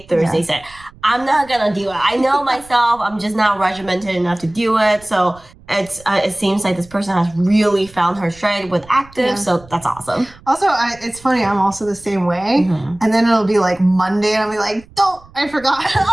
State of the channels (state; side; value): noise; right; rumble, 24 dB below the sound